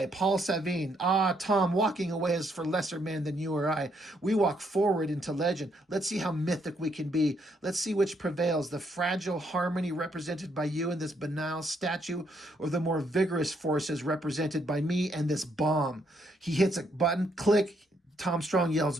Paul Savine. "Ah, Tom, walking away is for lesser men than you or I. We walk forward into legend. Let's see how mythic we can be. Let's see which prevails, the fragile harmony represented by you and this banal statue, or the more vigorous forces represented by me and this bomb." He hits a button, click. Tom Strong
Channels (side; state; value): both; normal; correlation 0.73